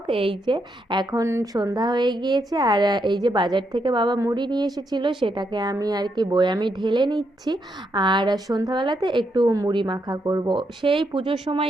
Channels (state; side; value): normal; both; correlation 0.79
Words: এই যে এখন সন্ধ্যা হয়ে গিয়েছে, আর এই যে বাজার থেকে বাবা মুড়ি নিয়ে এসেছিলো, সেটাকে আমি আর কি বয়ামে ঢেলে নিচ্ছি। আর সন্ধ্যাবেলাতে একটু মুড়ি মাখা করব। সেই পুজোর